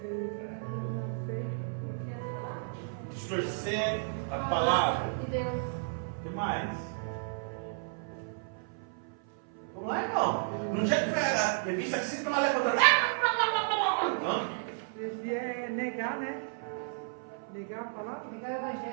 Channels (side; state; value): left; silent; 56 dB below the other